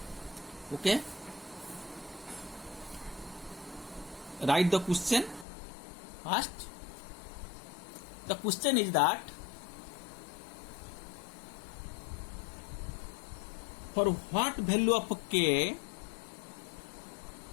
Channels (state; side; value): drops out; right; at 5.5 s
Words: Okay. Write the question first. The question is that for what value of k